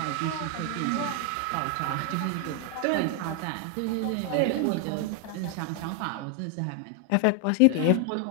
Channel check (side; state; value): both; different; correlation 0.00